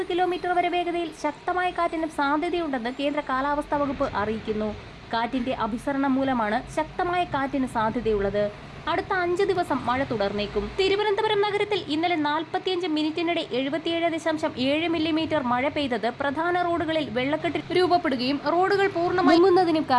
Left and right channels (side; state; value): both; identical; correlation 1.00